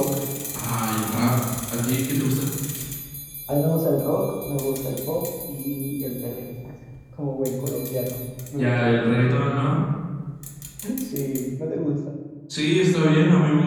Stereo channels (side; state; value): both; identical; correlation 1.00